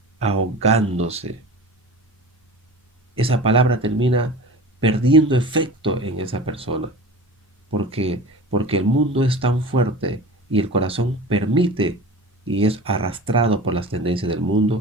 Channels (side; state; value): both; normal; correlation 0.35